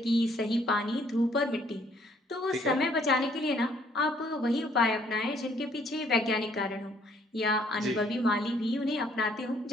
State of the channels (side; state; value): both; normal; correlation 0.64